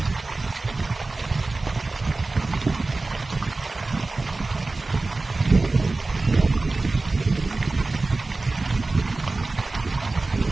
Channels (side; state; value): left; quieter; 3.4 dB